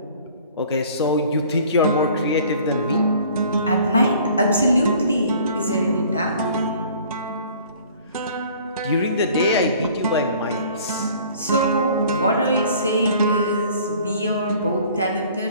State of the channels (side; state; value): both; inverted; correlation -0.51